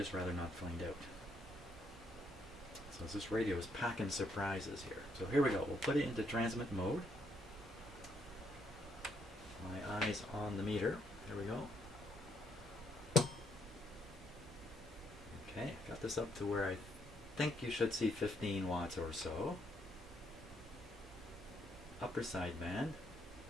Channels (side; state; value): both; normal; correlation 0.73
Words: rather not find out. So this radio is packing surprises here. So here we go. We'll put it into transmit mode. My eyes on the meter. There we go. Okay, got this up to where I think you should see 15 watts or so. Upper side band.